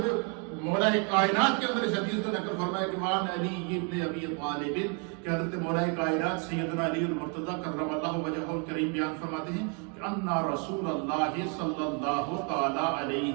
مولا کائنات کے اندر اس حدیث کو نقل فرمایا کہ وعن علی ابن ابی طالب کہ حضرت مولا کائنات سیدنا علی المرتضیٰ کرم اللہ وجہہ الکریم بیان فرماتے ہیں کہ ان رسول اللہ صلی اللہ تعالی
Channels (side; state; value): left; quieter; 37.0 dB